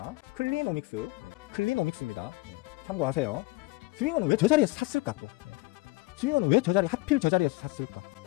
클리노믹스입니다. 참고하세요. 스윙어는 왜 저 자리에서 샀을까? 또 스윙어는 왜 하필 저 자리에서 샀을까?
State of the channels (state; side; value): quieter; right; 21.7 dB